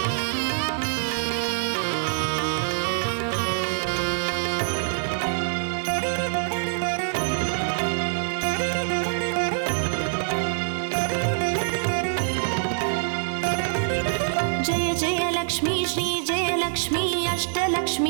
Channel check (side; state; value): left; silent; digital silence